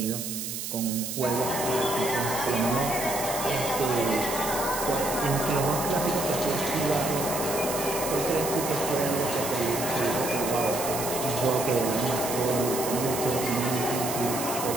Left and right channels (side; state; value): right; noise; hiss, 5 dB below the sound